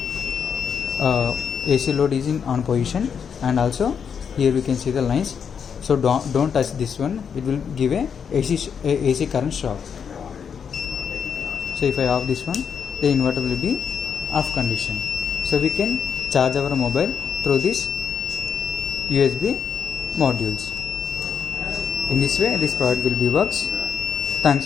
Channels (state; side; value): quieter; right; 7.1 dB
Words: AC load is in on position, and also here we can see the lines. So don't touch this one, it will give a AC current shock. So if I off this one, the inverter will be off condition. So we can charge our mobile through this USB modules. In this way this product will be works. Thanks